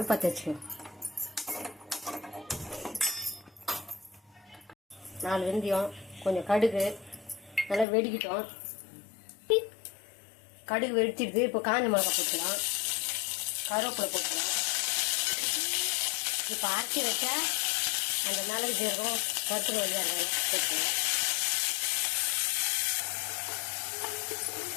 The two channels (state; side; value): drops out; right; at 7.9 s